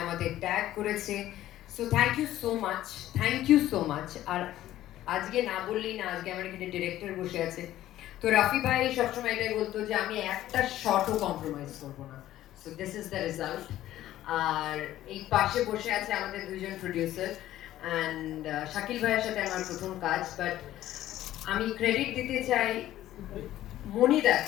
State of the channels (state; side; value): quieter; right; 13.8 dB